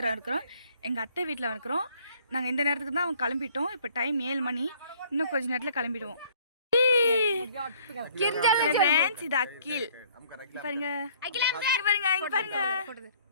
இருக்கிறோம், எங்கள் அத்தை வீட்டில் இருக்கிறோம். நாங்கள் இந்த நேரத்துக்கு தான் அவங்க கிளம்பிட்டோம். இப்போ டைம் 7 மணி. இன்னும் கொஞ்சம் நேரத்தில் கிளம்பிடுவோம். ஃப்ரெண்ட்ஸ், இது அக்கில் பாருங்க, பாருங்க, இங்க பாருங்க.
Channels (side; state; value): both; inverted; correlation -0.58